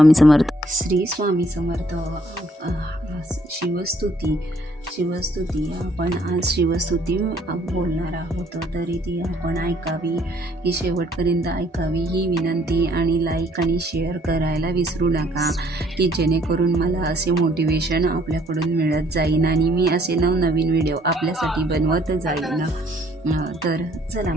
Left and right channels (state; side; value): normal; both; correlation 0.63